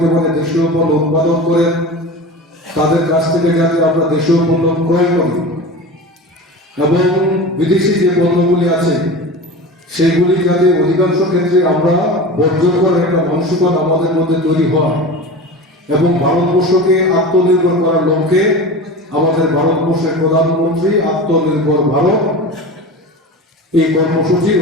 দেশীয় পণ্য উৎপাদন করেন, তাদের কাছ থেকে যাতে আমরা দেশীয় পণ্য ক্রয় করি এবং বিদেশি যে পণ্যগুলি আছে সেগুলি যাতে অধিকাংশ ক্ষেত্রে আমরা বর্জন করার একটা মানসিকতা আমাদের মধ্যে তৈরি হয় এবং ভারতবর্ষকে আত্মনির্ভর করার লক্ষ্যে আমাদের ভারতবর্ষের প্রধানমন্ত্রী আত্মনির্ভর ভারত এই কর্মসূচি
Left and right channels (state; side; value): normal; both; correlation 0.31